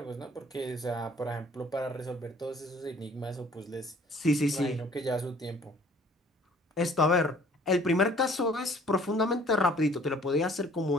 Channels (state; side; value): normal; both; correlation 0.55